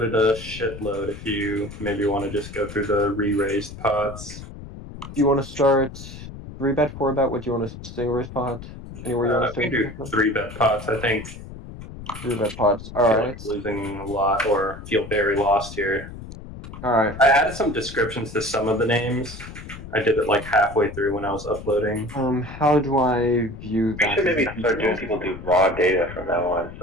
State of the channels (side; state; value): left; noise; rumble, 13 dB below the sound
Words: a shitload. If you maybe want to just go through the re-raised pots. Do you want to start 3-bet, 4-bet? What do you want to single raise pot? Anywhere you want to We can start? do 3-bet pots. I think 3-bet pots. All I feel right. like losing a lot or feel very lost here. All right. I added some descriptions to some of the names. I did it like halfway through when I was uploading. How do I view We that? should Is maybe it start doing detailed? people do raw data from now on,